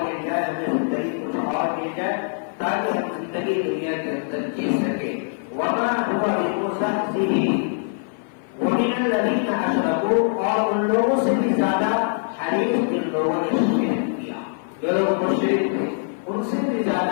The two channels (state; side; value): silent; right; 56 dB below the other